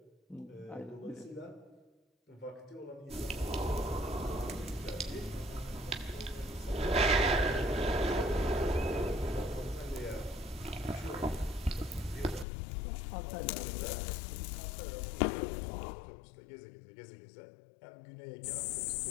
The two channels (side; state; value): right; drops out; at 12.5 s